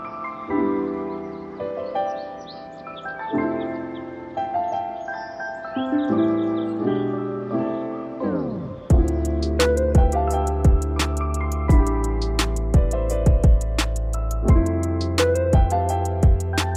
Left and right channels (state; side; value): identical; both; correlation 1.00